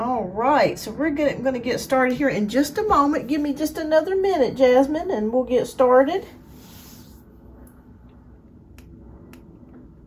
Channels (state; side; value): identical; both; correlation 1.00